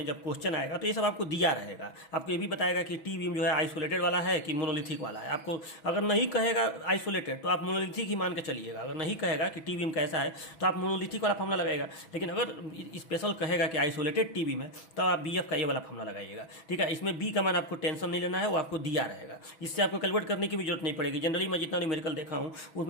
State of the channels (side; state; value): right; late; 6.1 ms